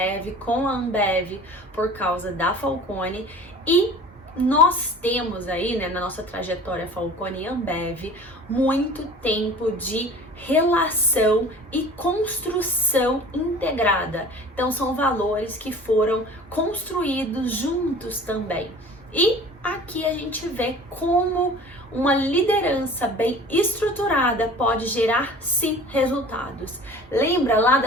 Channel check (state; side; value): normal; both; correlation 0.43